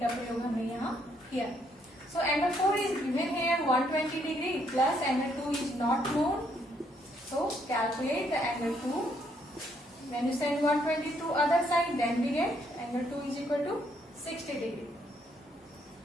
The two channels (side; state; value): both; normal; correlation 0.71